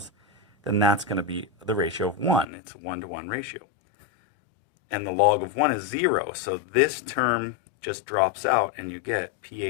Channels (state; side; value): drops out; right; at 2.5 s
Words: then that's going to be the ratio of 1. It's a 1-to-1 ratio. And the log of 1 is 0, so this term just drops out and you get